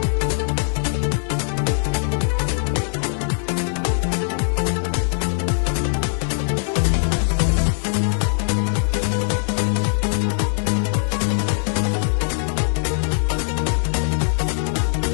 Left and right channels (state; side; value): silent; right; digital silence